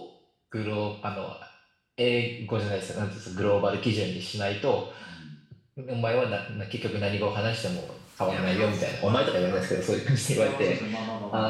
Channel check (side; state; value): both; identical; correlation 1.00